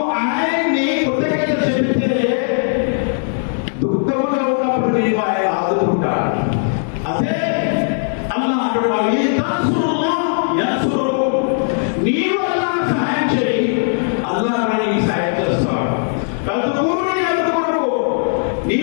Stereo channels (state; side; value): silent; right; digital silence